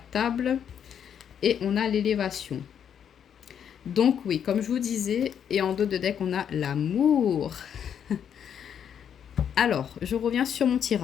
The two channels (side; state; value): right; quieter; 8.5 dB